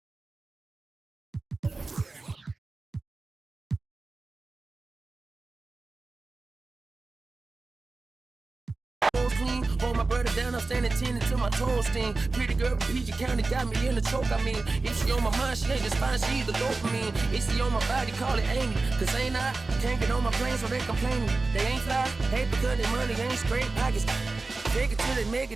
clean. Hold my brother down, I'm standing 10 until my toes sting. Pretty girl from PG County got me in the choke, I mean. If she on my mind, she ain't just fine, she either dopamine. If she on my body, call it Amy. Cause ain't I can't get on my plane, so they complaining. They ain't fly, hate because their money ain't straight pockets. Take it till they make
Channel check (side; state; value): left; quieter; 3.6 dB